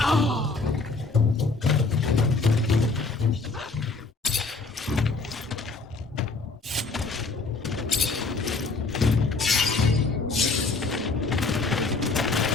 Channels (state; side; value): quieter; right; 3.9 dB